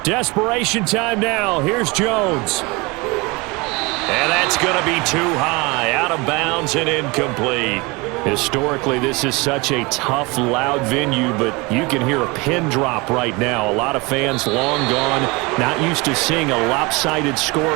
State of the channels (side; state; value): left; quieter; 25.7 dB